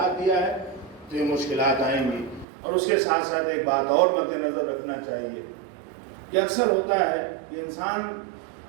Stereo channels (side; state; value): left; drops out; at 2.5 s